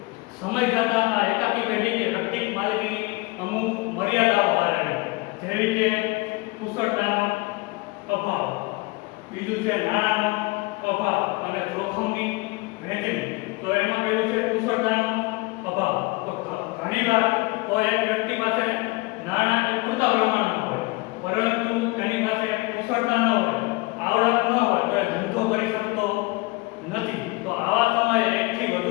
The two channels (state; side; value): quieter; right; 24.4 dB